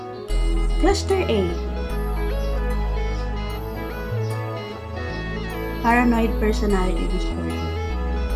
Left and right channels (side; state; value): both; identical; correlation 1.00